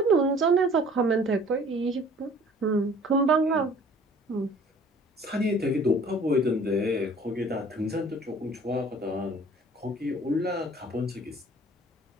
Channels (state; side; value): normal; both; correlation 0.51